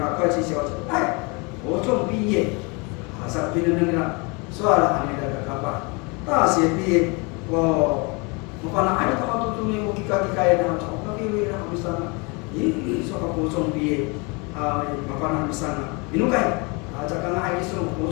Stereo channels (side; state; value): right; quieter; 29.8 dB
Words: kau isi siapa, ocong biye, asal mendengar soal anak berakapa. 大学毕业，我本来还到都中间我去搞那，我搞那那没上啊，说个高中毕业麻烦那没上啊，你弄开这个那还说高